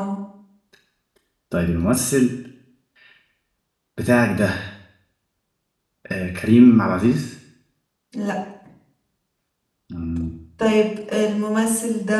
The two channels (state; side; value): identical; both; correlation 1.00